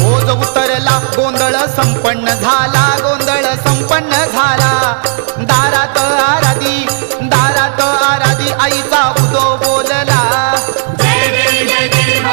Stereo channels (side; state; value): left; silent; digital silence